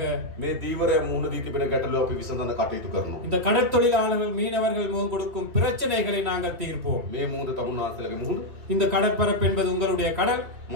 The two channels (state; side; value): late; left; 3.1 ms